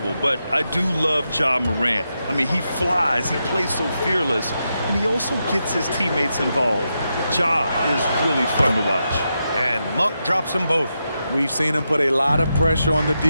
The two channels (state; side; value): inverted; both; correlation -0.86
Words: but I do love Ja Morant. I mean, he flies, he plays so fearless, and he also gets his teammates involved. Ja is really fun to watch. And Monk drops them both. We've seen him put a lot of pressure on the